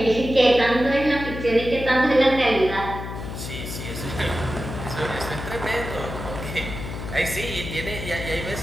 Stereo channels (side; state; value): left; noise; hum, 8 dB below the sound